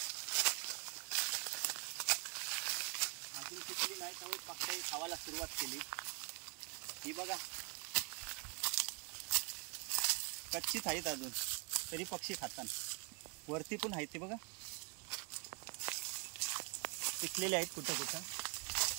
अजून पिकली नाही त्यामुळे पक्षी खावायला सुरुवात केली. ही बघा कच्चीच आहेत अजून तरी पक्षी खातात. वरती पण आहेत ते बघा पिकलेले आहेत कुठं कुठं.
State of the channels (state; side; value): quieter; left; 34.5 dB